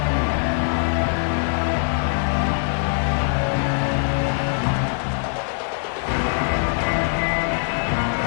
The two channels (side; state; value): right; silent; digital silence